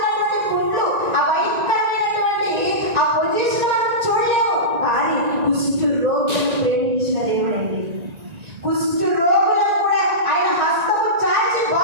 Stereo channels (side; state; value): left; late; 1.9 ms